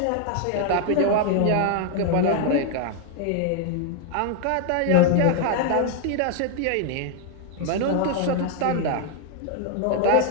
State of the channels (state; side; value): different; both; correlation 0.00